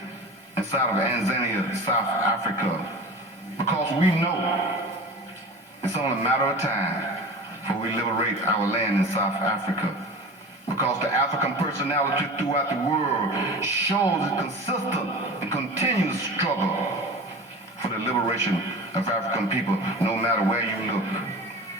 inside of Tanzania, South Africa, because we know it's only a matter of time before we liberate our land in South Africa. Because the African personality throughout the world shows a consistent and continuous struggle for the liberation of African people, no matter where you look.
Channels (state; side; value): normal; both; correlation 0.34